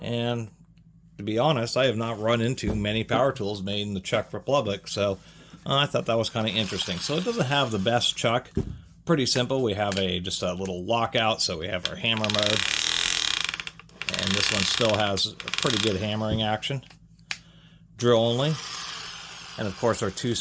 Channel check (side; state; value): both; identical; correlation 1.00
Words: And to be honest, I have not run into many power tools made in the Czech Republic, so I thought that was kind of interesting. So it doesn't have the best chuck. Pretty simple. We have just a little lockout, so we have our hammer mode. And this one still has a pretty good hammering action. Drill only. And of course our